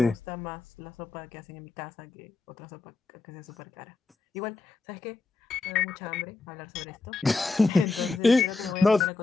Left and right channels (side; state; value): right; quieter; 3.8 dB